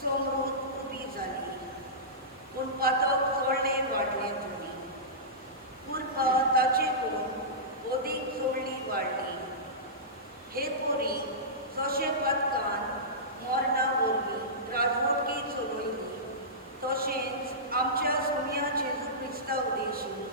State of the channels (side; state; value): both; normal; correlation -0.18